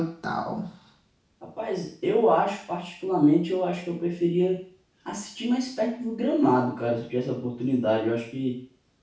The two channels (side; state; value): both; identical; correlation 1.00